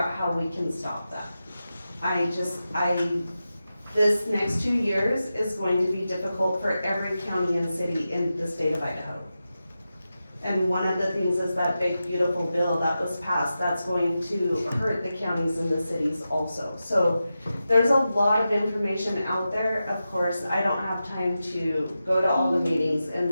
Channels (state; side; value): inverted; both; correlation -0.91